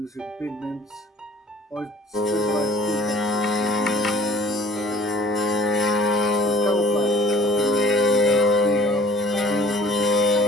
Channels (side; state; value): both; normal; correlation 0.52